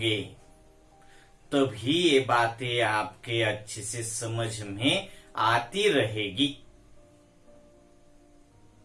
तभी ये बातें आपके अच्छे से समझ में आती रहेगी।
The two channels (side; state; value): both; identical; correlation 1.00